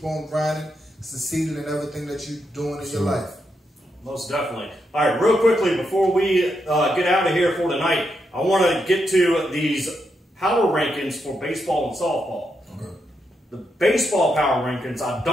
on grinding, succeeding in everything that you're doing in your life. Most definitely. All right, real quickly, before we get out of here for tonight, I want to get to these power rankings for baseball and softball. Okay. The baseball power rankings, I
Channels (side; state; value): both; normal; correlation 0.82